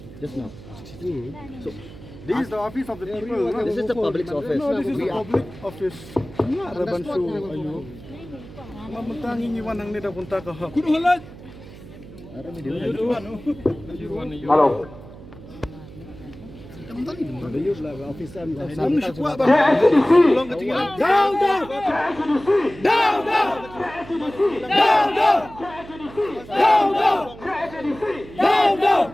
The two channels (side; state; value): right; noise; hum, 17 dB below the sound